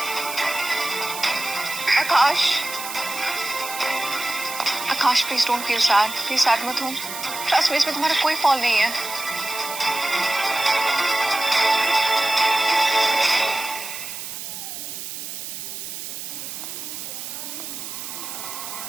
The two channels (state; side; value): noise; right; hiss, 8 dB below the sound